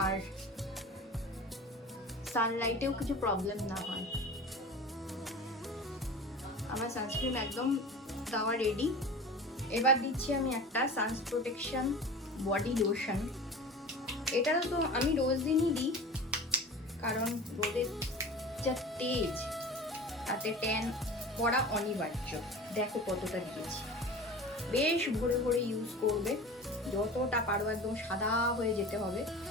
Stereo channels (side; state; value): both; normal; correlation 0.36